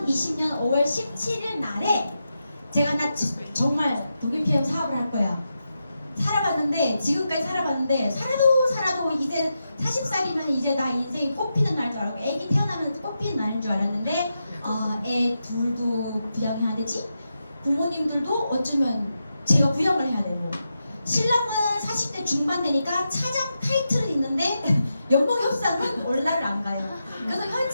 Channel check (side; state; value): both; inverted; correlation -0.87